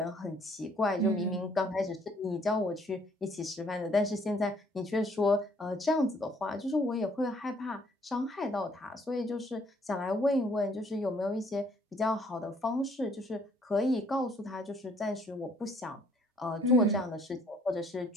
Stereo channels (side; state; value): both; normal; correlation 0.63